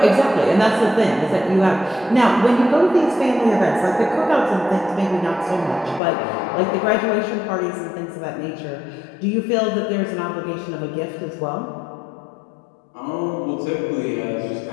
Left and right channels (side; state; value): right; drops out; at 6.0 s